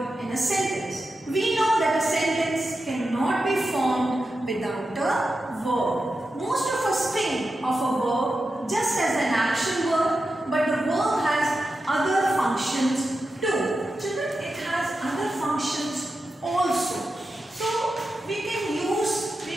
in a sentence. We know that a sentence cannot be formed without a verb. Most of us think of a verb just as an action word, but the verb has other functions too. Children, it has other functions also. So we can use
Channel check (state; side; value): normal; both; correlation 0.90